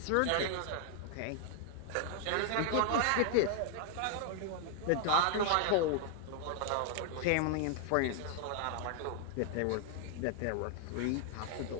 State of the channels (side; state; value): both; different; correlation 0.00